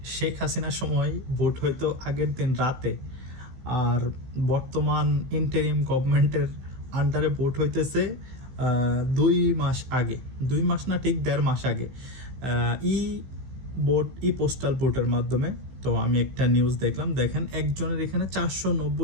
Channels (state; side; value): late; left; 15 ms